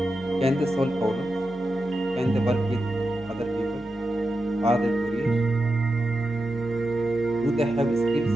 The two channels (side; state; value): both; normal; correlation 0.89